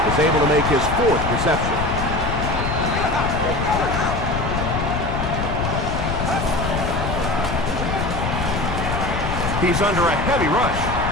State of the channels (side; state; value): left; noise; rumble, 2 dB below the sound